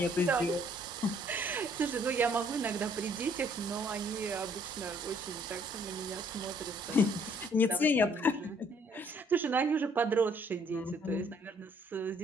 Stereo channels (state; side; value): normal; both; correlation 0.63